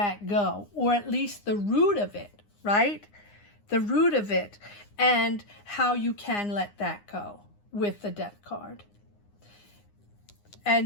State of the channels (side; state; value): right; late; 9.8 ms